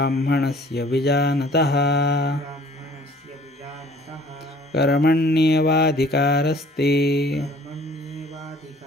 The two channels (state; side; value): normal; both; correlation 0.54